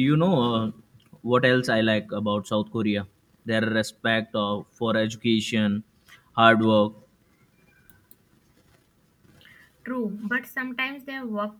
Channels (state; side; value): identical; both; correlation 1.00